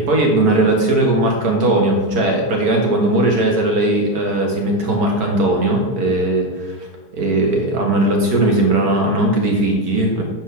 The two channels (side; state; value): left; late; 4.7 ms